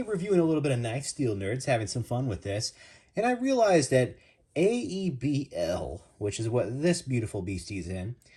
reviewing a little bit of Knife Steel Nerds, having some fun with this. And I realized that AEB-L, which is what this beautiful beastie's in,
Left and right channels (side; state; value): both; identical; correlation 1.00